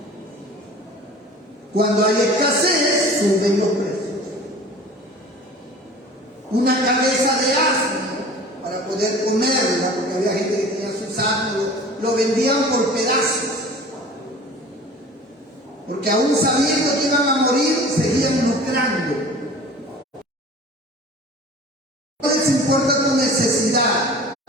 Cuando hay escasez, suben los precios. Una cabeza de asno para poder comerla, porque había gente que tenía sus asnos, lo vendían por pedazos, porque aún sabiendo que iban a morir, seguían lucrando. No les importa tu necesidad.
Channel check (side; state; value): both; normal; correlation 0.42